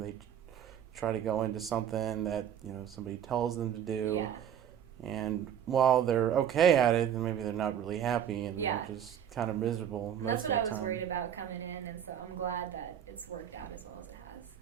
try to go into something that somebody tells them to do, and while they're okay at it, then maybe they're not really happy, and they're just kind of miserable most of the time. That's what I was worried about coming in, and so I'm glad that it's worked out as well as it has.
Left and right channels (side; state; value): left; quieter; 9.5 dB